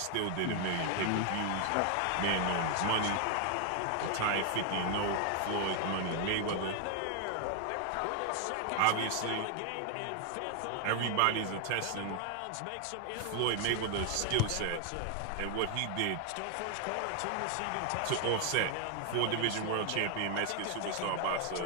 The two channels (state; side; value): different; both; correlation 0.00